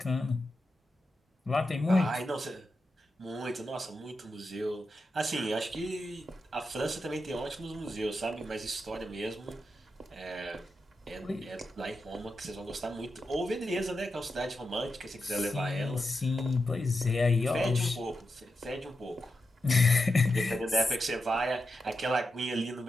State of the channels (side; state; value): both; normal; correlation 0.88